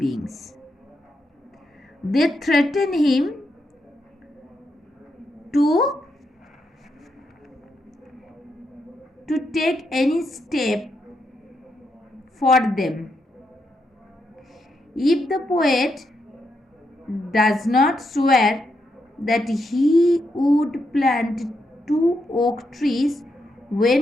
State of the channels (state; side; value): normal; both; correlation 0.81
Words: They threaten him to take any step for them. If the poet does not swear that he would plant 2 oak trees